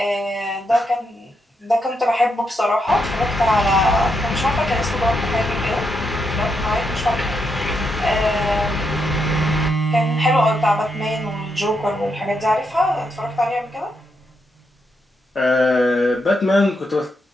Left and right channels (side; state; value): both; normal; correlation 0.81